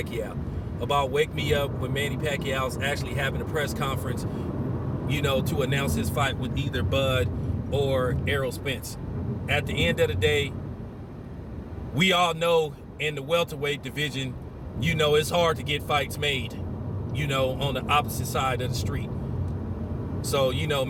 about Wake Me Up when Manny Pacquiao's actually having a press conference, to announce his fight with either Bud or Errol Spence. At the end of the day, we all know in the welterweight division, it's hard to get fights made, on the opposite side of the street. So,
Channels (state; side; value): identical; both; correlation 1.00